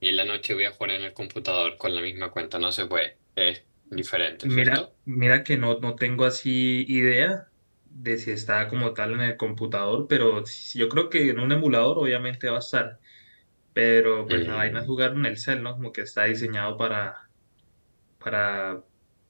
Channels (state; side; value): inverted; both; correlation -1.00